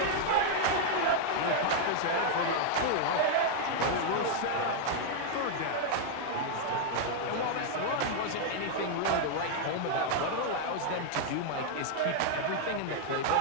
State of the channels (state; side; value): different; both; correlation 0.00